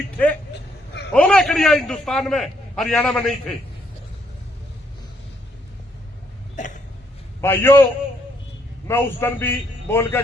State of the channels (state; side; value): normal; both; correlation 0.72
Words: थे। हो गए कड़िया हिंदुस्तान में, हरियाणा में नहीं थे। भाइयों मैं उस दिन भी बोल के